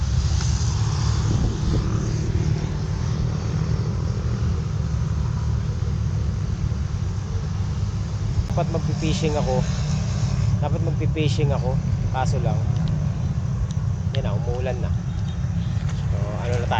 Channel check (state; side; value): identical; both; correlation 1.00